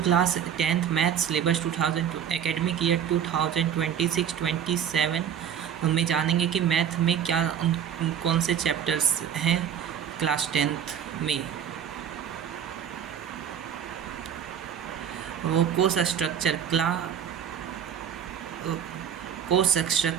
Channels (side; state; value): left; quieter; 8.7 dB